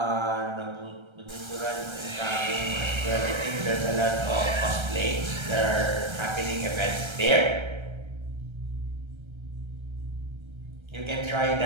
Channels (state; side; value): late; left; 1.3 ms